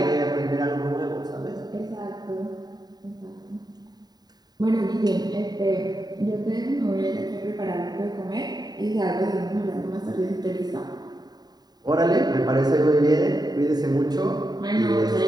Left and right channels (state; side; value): late; left; 0.20 ms